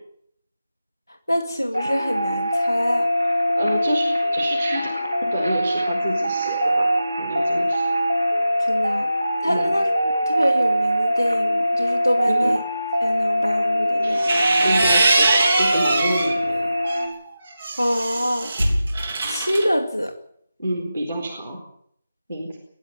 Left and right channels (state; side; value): inverted; both; correlation -0.92